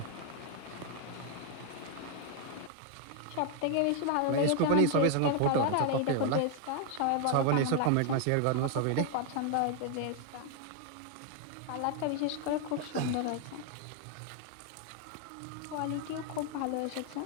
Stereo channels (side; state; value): both; different; correlation 0.00